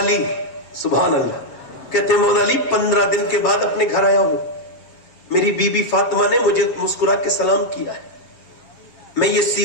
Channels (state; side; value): late; right; 7.6 ms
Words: سبحان اللہ کہتے ہیں مولا علی 15 دن کے بعد اپنے گھر آیا ہوں. میری بی بی فاطمہ نے مجھے مسکرا کے سلام کیا ہے. میں یہ